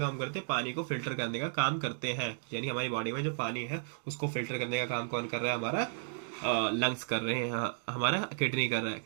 करते हैं, पानी को फिल्टर करने का काम करते हैं। यानी हमारी बॉडी में जो पानी है उसको फिल्टर करने का काम कौन कर रहा है, हमारा लंग्स कर रहे हैं, हमारा किडनी कर रहा है।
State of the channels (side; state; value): left; silent; digital silence